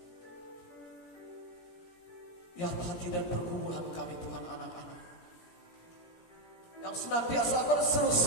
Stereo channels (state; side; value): late; right; 17 ms